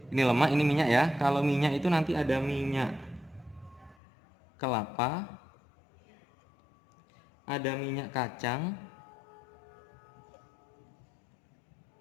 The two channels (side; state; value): right; drops out; at 4.0 s